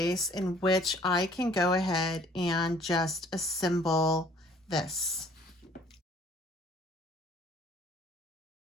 in which I can go ahead and just assemble this.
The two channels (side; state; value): both; normal; correlation 0.57